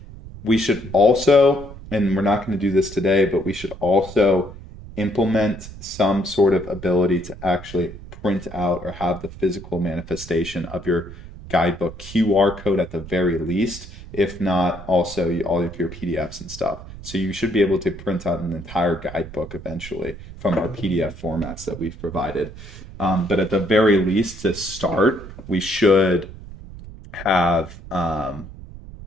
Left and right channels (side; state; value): right; noise; rumble, 15 dB below the sound